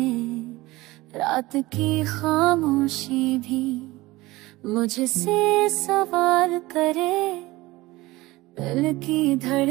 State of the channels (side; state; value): left; quieter; 19.8 dB